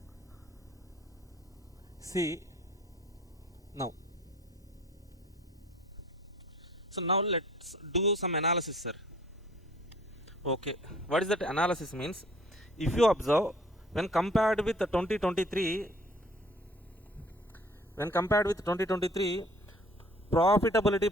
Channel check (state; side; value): normal; both; correlation 0.53